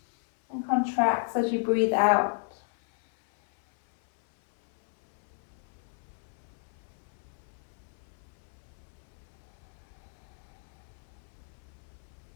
and contracts as you breathe out.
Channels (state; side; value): silent; right; 56 dB below the other